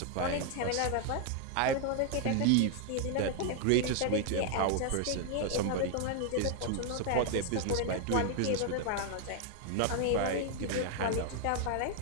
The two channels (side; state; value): both; different; correlation 0.00